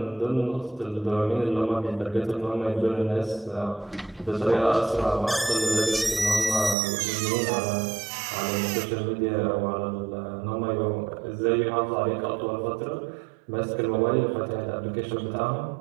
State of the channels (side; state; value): left; drops out; at 6.8 s